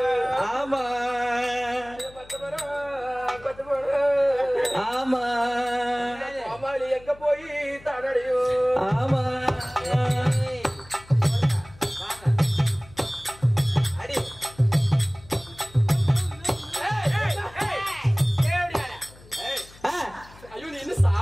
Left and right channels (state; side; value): noise; left; hum, 22 dB below the sound